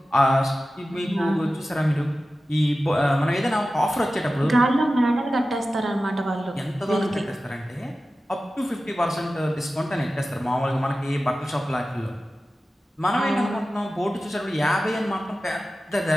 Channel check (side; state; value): both; normal; correlation 0.94